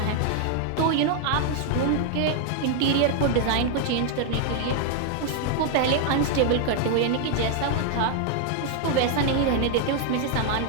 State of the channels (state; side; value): different; both; correlation 0.00